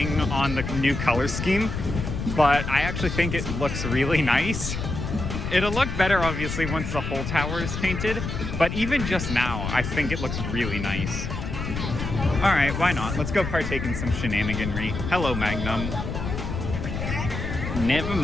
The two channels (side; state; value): left; noise; rumble, 4 dB below the sound